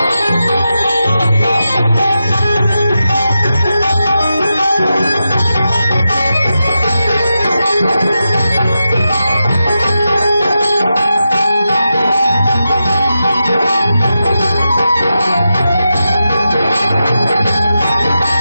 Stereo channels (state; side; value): inverted; both; correlation -0.89